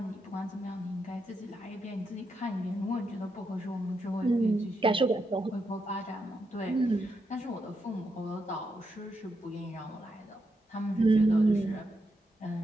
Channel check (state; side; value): normal; both; correlation 0.82